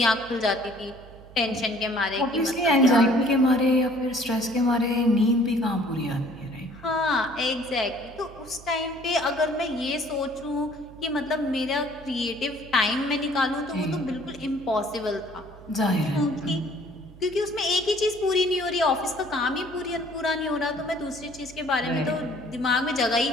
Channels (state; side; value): noise; right; hum, 20 dB below the sound